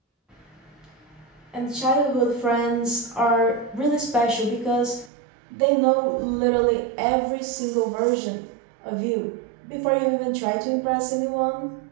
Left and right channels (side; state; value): left; drops out; at 5.1 s